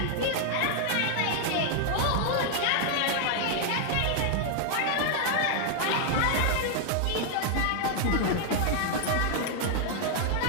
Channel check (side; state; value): both; different; correlation 0.00